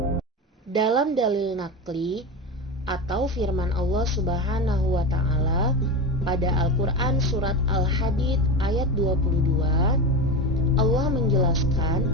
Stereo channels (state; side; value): normal; both; correlation 0.21